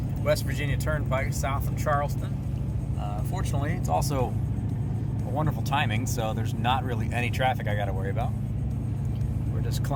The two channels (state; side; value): identical; both; correlation 1.00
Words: West Virginia Turnpike south of Charleston. Fortunately, it's also a wonderful timing, so there's not really any traffic I got to worry about. We're just